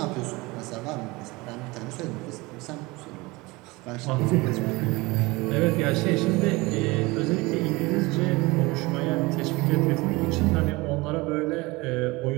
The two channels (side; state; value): left; quieter; 23.1 dB